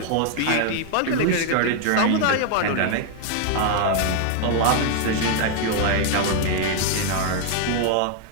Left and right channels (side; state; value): both; different; correlation 0.00